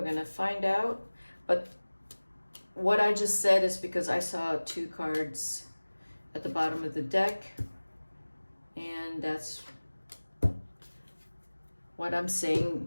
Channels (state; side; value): inverted; both; correlation -1.00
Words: going to find out. But what I just said is because I saw two cards at the bottom of the deck. And that's what I'm